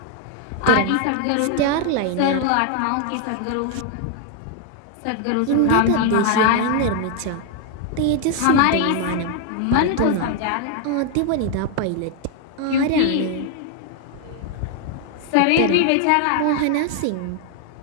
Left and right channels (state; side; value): different; both; correlation 0.00